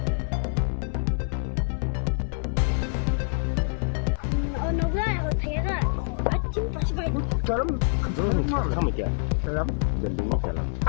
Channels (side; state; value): right; silent; 61 dB below the other